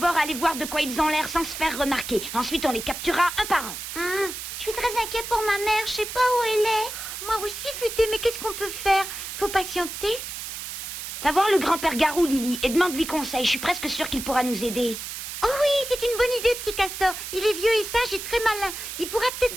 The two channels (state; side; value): noise; right; hiss, 8 dB below the sound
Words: aller voir de quoi ils ont l'air sans se faire remarquer. Ensuite, on les capturera un par un. Je suis très inquiet pour ma mère, je sais pas où elle est. Moi aussi, Futé, mais qu'est-ce qu'on peut faire? Faut patienter. Va voir le grand-père Garou, Lily, et demande-lui conseil. Je suis presque sûre qu'il pourra nous aider. Oh oui, c'est une bonne idée, Petit Castor. Il est vieux et sage et très malin. Il pourra